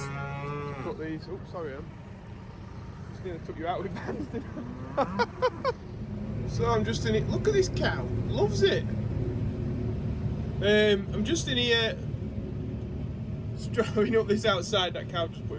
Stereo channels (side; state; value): both; identical; correlation 1.00